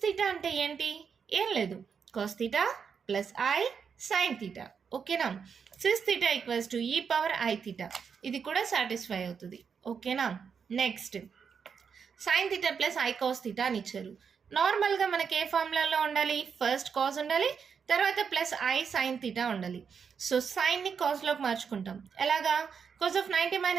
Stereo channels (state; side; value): quieter; left; 6.5 dB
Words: తీటా అంటే ఏంటి? ఏం లేదు, cos theta plus i sine theta. ఓకేనా? Cis theta equals to e⁻i theta. ఇది కూడా సాటిస్ఫై అవుతుంది. ఓకేనా? Next sine theta plus i cos theta అని ఇచ్చారు. నార్మల్గా మనకి ఏ ఫార్ములాలో ఉండాలి? ఫస్ట్ కాస్ ఉండాలి, తర్వాత ప్లస్ ఐ సైన్ థీటా ఉండాలి. సో సైన్ని కాస్లోకి మార్చుకుంటాం. ఎలాగా? Cos of 90